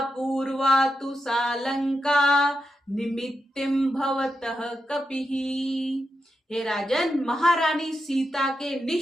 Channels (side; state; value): both; normal; correlation 0.87